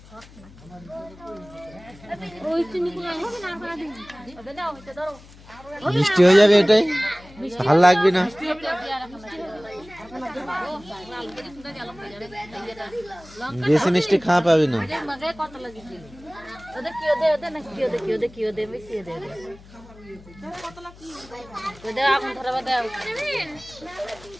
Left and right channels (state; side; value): noise; left; hum, 21 dB below the sound